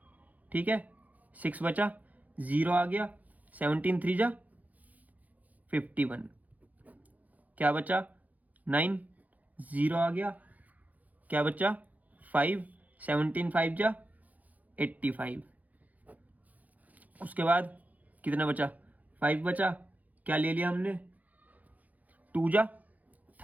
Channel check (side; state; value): left; late; 0.078 ms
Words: ठीक है। 6 बचा, 0 आ गया, 17 3 जा 51, क्या बचा 9, 0 आ गया, क्या बचा 5, 17 5 जा 85। उसके बाद कितना बचा, 5 बचा, क्या ले लिया हमने, 2 जा